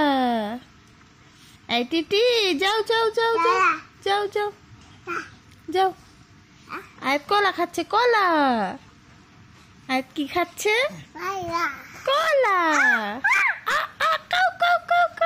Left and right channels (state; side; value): identical; both; correlation 1.00